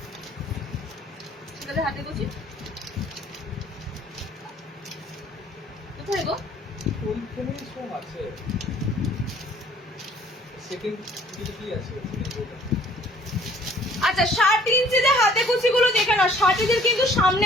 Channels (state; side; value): normal; both; correlation 0.56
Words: হাতে কুচি কোথায় গো? ওইখানেই সব আছে। সেকেন্ড কি আছে? আচ্ছা 60 ইঞ্চিতে হাতে কুচিগুলো দেখে নাও, 60 কিন্তু সামনে